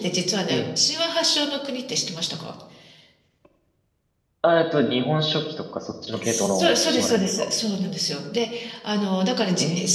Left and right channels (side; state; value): both; identical; correlation 1.00